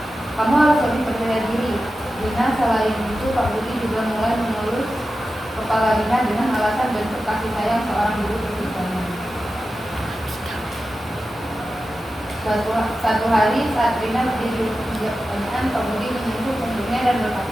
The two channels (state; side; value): normal; both; correlation 0.92